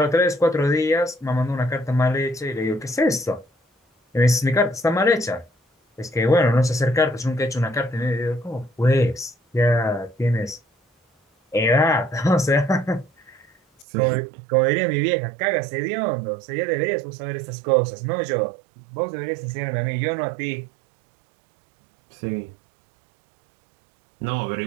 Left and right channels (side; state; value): left; drops out; at 13.9 s